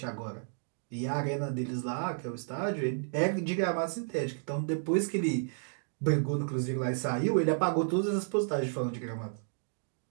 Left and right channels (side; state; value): left; silent; digital silence